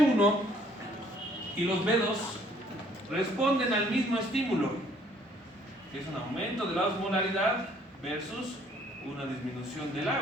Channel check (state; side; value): normal; both; correlation 0.61